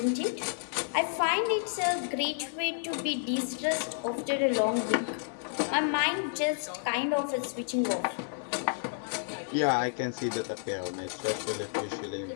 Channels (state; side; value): silent; right; digital silence